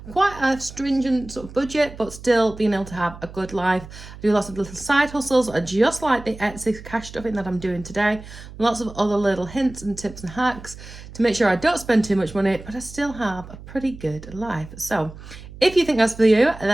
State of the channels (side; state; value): right; noise; hum, 16 dB below the sound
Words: quite a stringent sort of budget, but still being able to have a good life. I do lots of little side hustles, just like the Etsy cash stuffing that I'm doing today. Lots of other little hints and tips and hacks to make sure I don't spend too much money, but I still have a pretty good life. So if you think that's for you,